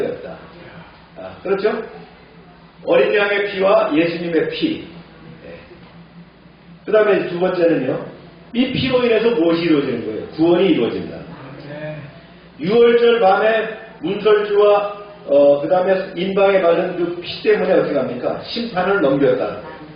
그렇죠? 어린 양의 피와 예수님의 피. 그 다음에 두 번째는요. 이 피로 인해서 무엇이 이루어지는 거예요? 구원이 이루어진다. 유월절 밤에 문설주와 그 다음에 인방에 바른 그 피 때문에 어떻게 합니까? 심판을 넘겼다는 거예요.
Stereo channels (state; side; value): identical; both; correlation 1.00